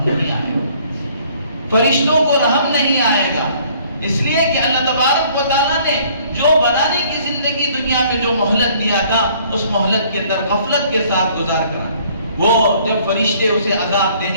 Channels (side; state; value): both; inverted; correlation -0.59